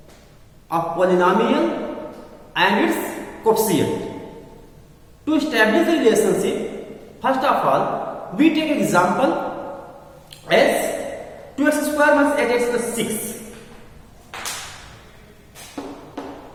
of polynomial and its coefficient. To establish the relationship, first of all, we take an example as 2x square minus 8x plus 6.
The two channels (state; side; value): identical; both; correlation 1.00